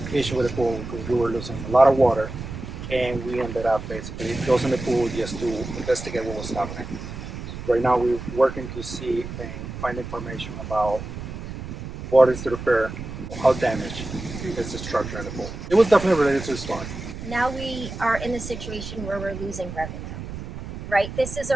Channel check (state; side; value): noise; right; rumble, 9 dB below the sound